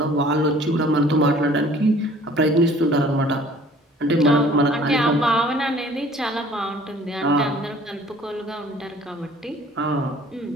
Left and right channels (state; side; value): normal; both; correlation 0.52